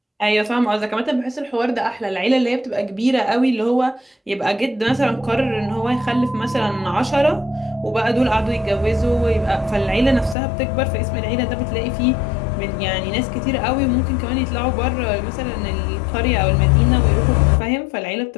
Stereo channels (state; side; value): drops out; right; at 10.4 s